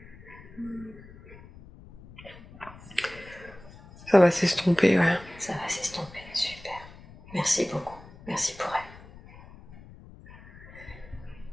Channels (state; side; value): noise; left; rumble, 19 dB below the sound